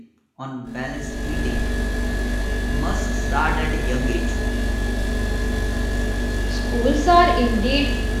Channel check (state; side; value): identical; both; correlation 1.00